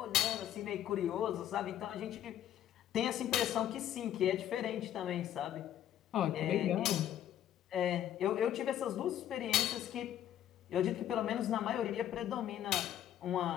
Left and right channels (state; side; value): quieter; right; 11.2 dB